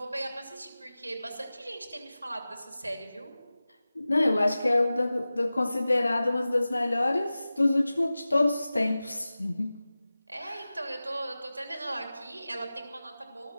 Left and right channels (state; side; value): inverted; both; correlation -0.96